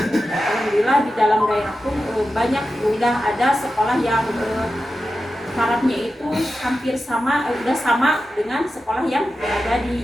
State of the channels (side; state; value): both; normal; correlation 0.92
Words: di dalam daerah pun banyak udah ada sekolah yang syaratnya itu hampir sama, udah sama dengan sekolah yang ada